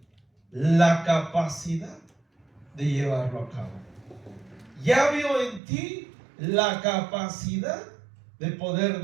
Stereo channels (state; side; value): drops out; left; at 5.6 s